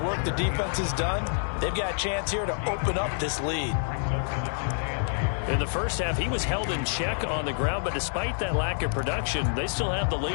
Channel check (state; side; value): silent; right; digital silence